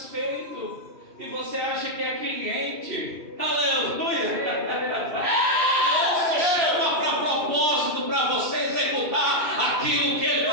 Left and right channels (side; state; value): left; late; 3.0 ms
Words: E você acha que é cliente. Aleluia! Deus te chama para propósito, para você executar aquilo que Ele